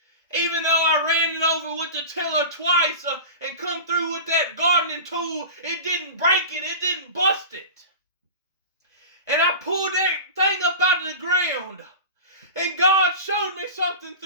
Even though I ran it over with the tiller twice and come through with that gardening tool, it didn't break it. It didn't bust it. ground. And God showed me something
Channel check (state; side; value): inverted; both; correlation -0.31